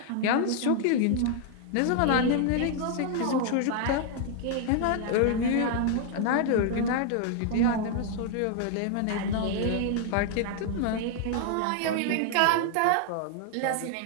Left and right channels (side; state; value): both; different; correlation 0.00